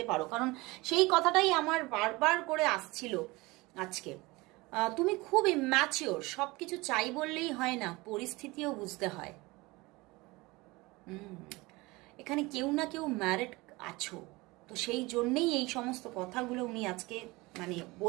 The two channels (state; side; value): quieter; left; 22.6 dB